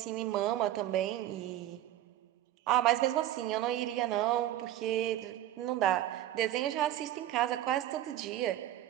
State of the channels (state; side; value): quieter; left; 13.3 dB